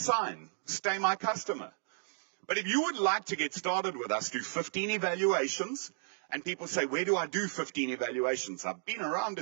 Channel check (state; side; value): silent; left; digital silence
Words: Stay my customer. But if you would like to get started with us, do 15 evaluations. And people say, where do I do 15 evaluations? I've been around